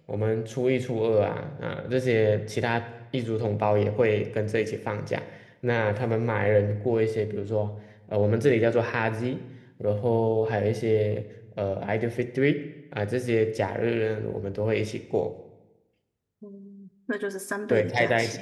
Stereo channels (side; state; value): both; identical; correlation 1.00